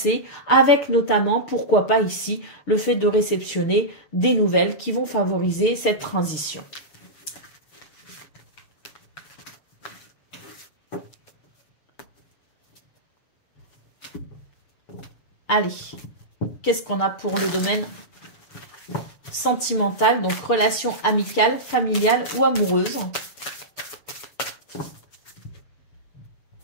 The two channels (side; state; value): right; late; 6.7 ms